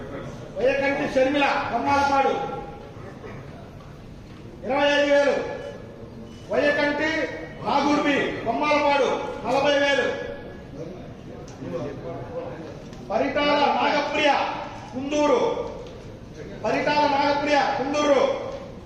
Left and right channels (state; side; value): identical; both; correlation 1.00